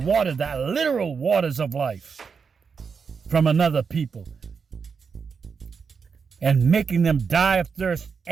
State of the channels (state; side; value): quieter; left; 5.8 dB